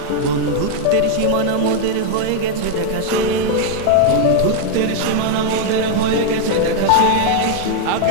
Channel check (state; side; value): different; both; correlation 0.00